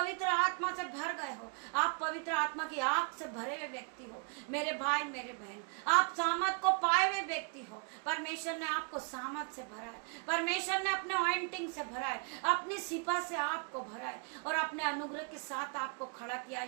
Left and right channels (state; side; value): quieter; left; 36.9 dB